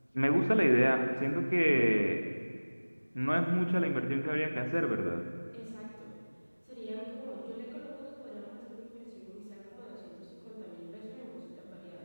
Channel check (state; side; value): inverted; both; correlation -1.00